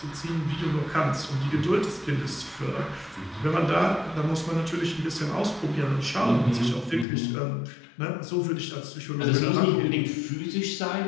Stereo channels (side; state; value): right; drops out; at 7.1 s